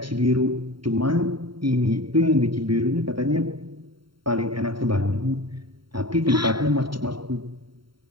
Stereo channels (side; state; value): left; late; 0.73 ms